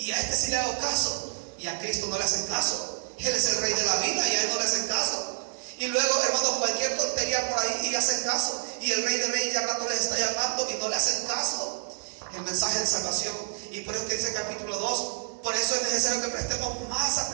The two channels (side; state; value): left; silent; digital silence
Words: a este sí le hago caso, y a Cristo no le hacen caso. Él es el Rey de la vida y a él no le hacen caso. Y luego, hermano, cualquier tontería por ahí y hacen caso, y el Rey de Reyes ya al rato les está llamando y no le hacen caso. El mensaje de salvación. Y por eso que dice el capítulo 2, por eso es necesario que prestemos más